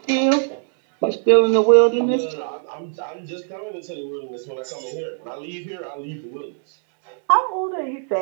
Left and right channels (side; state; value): left; silent; 64 dB below the other